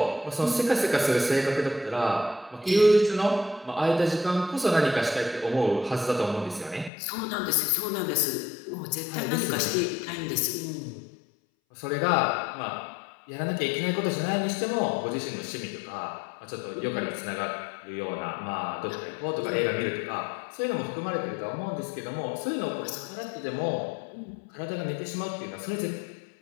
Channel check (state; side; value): drops out; right; at 6.9 s